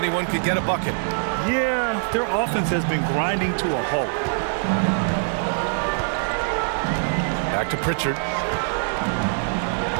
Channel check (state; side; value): silent; left; 63 dB below the other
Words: could get a bucket. Yeah, their offense has been grinding to a halt. Back to Pritchard.